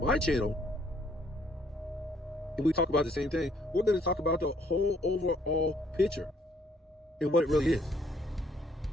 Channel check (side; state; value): both; normal; correlation 0.66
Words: channel and we talk about the same thing, we're going to talk about the whole overall picture and what it really is,